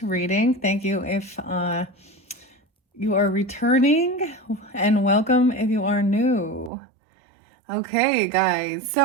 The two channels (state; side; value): drops out; left; at 6.7 s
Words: reading. Thank you if you are returning, and welcome if you are new. Okay, guys,